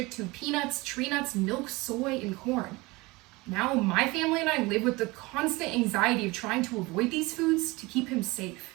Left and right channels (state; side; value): quieter; left; 23.0 dB